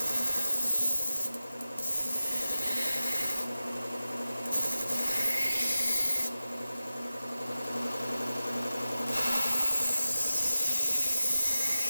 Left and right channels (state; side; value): inverted; both; correlation -0.94